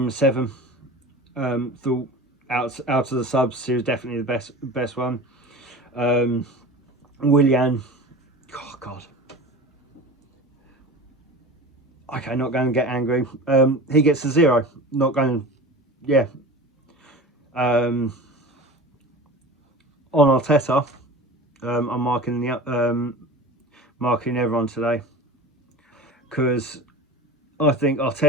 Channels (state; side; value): normal; both; correlation 0.35